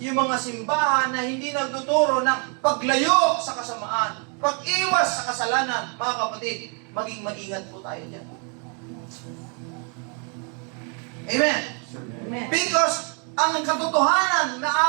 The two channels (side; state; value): left; quieter; 37.5 dB